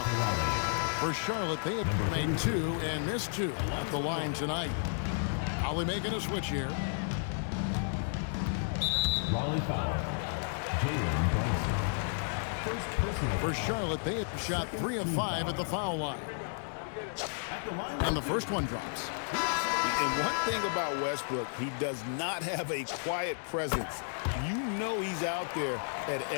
For Charlotte, they have made 2 and missed 2 at the line tonight. Raleigh making a switch here. Raleigh foul. Jalen Brunson. For Charlotte, they have shot 3 of 5 at the foul line. And the first one drops. And one thing about Westbrook, he does not have a quiet presence. You know he's out there at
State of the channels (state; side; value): silent; right; digital silence